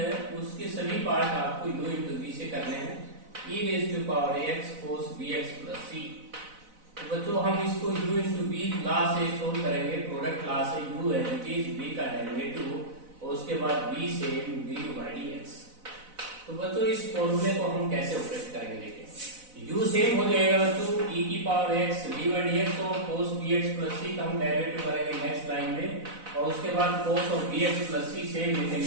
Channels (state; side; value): late; left; 4.0 ms